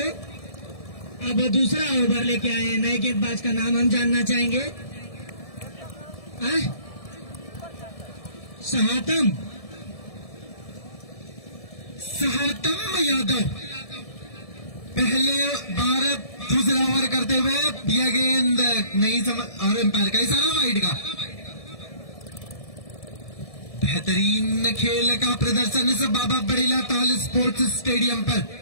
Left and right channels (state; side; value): late; right; 1.7 ms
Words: अब दूसरा ओवर लेके आए हैं, नए गेंदबाज का नाम हम जानना चाहेंगे। सहातम यादव पहले बार दूसरा ओवर करते हुए यह गेंद नहीं समझ, और एम्पायर का इशारा वाइड का। बेहतरीन खेल का प्रदर्शन इस बाबा बड़ीला ताल स्पोर्ट्स स्टेडियम पर